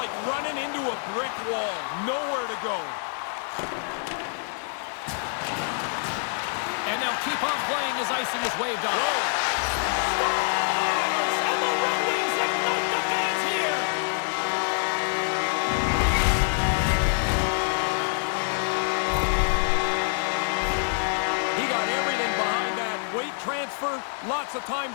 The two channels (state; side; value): silent; right; 61 dB below the other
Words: running into a brick wall. Nowhere to go. And they'll keep on playing as icing is waved off. Scores! And the Red Wings ignite the fans here. He got everything behind that. Weight transfer, lots of time